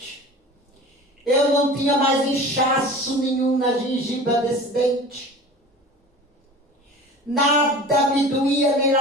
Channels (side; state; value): both; normal; correlation 0.39